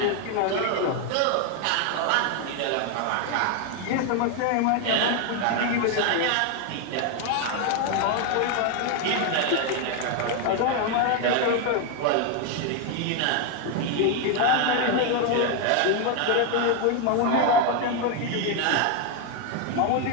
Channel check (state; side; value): different; both; correlation 0.01